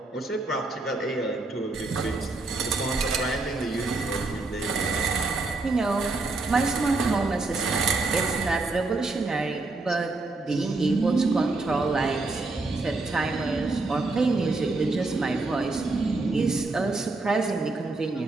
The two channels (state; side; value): quieter; left; 3.4 dB